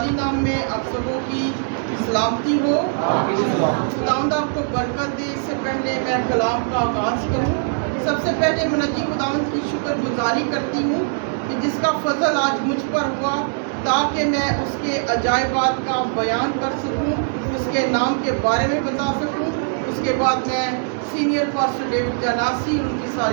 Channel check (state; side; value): silent; left; digital silence